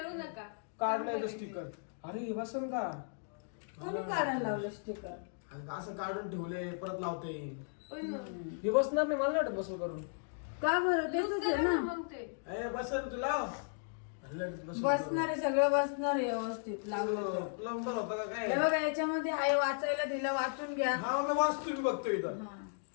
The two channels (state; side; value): silent; right; digital silence